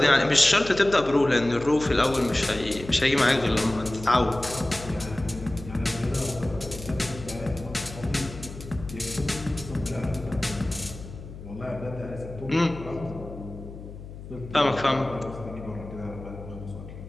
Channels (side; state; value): left; noise; hum, 13 dB below the sound